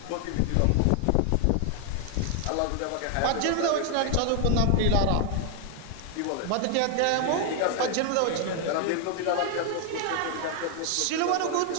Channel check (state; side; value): different; both; correlation 0.00